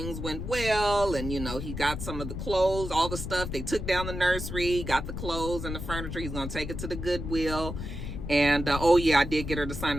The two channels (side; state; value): left; noise; rumble, 6 dB below the sound